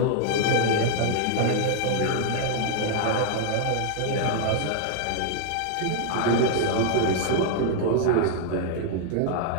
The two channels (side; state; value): both; different; correlation 0.00